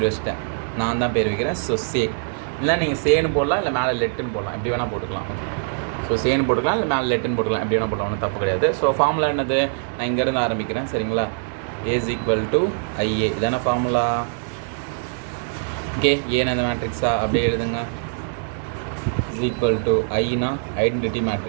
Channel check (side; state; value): left; silent; digital silence